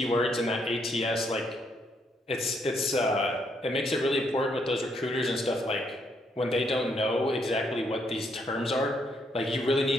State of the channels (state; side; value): normal; both; correlation 0.74